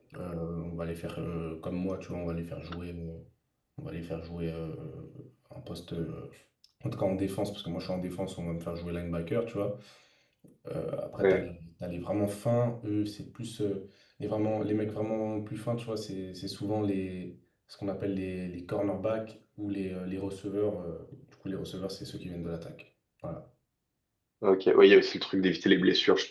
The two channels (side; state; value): both; identical; correlation 1.00